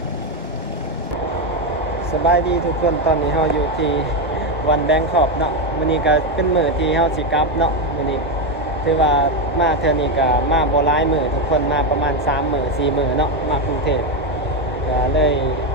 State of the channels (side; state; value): both; normal; correlation 0.08